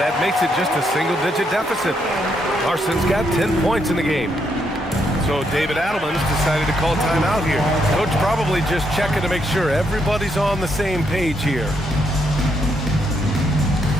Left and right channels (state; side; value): normal; both; correlation 0.76